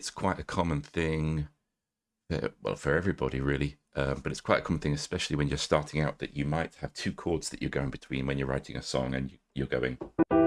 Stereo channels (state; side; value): identical; both; correlation 1.00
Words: quite a common thing, well, for everybody really, but it's quite a common thing, especially when you're starting out, that you might have two chords that you're going between when you're writing a song, and you're going.